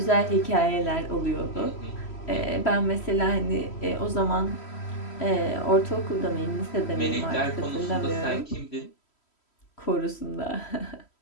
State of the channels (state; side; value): late; right; 3.1 ms